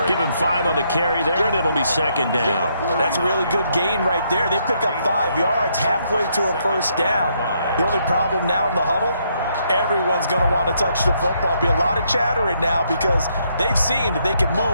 Give him 5 on the carry there, and it'll be 2nd down. That's a really good gain right there. They pick up 5 yards halfway to a first down. The only problem now in the huddle, everyone's going to want to touch the football. Be a lot of chattering now because they've seen that they can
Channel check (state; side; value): inverted; both; correlation -0.74